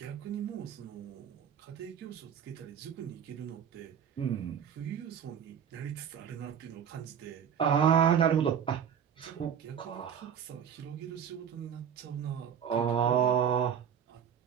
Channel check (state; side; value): quieter; left; 8.2 dB